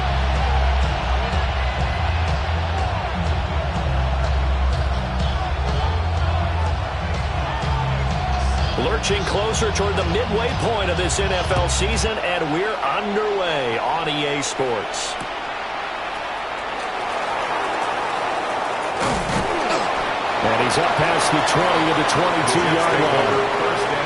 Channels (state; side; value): identical; both; correlation 1.00